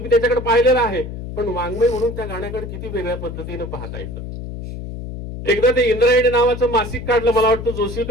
त्याच्याकडे पाहिलेलं आहे, पण वाङ्मय म्हणून त्या गाण्याकडे किती वेगळ्या पद्धतीने पाहता येतं. एकदा ते इंद्रायणी नावाचं मासिक काढलं, मला वाटतं जोशी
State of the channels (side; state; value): left; noise; hum, 9 dB below the sound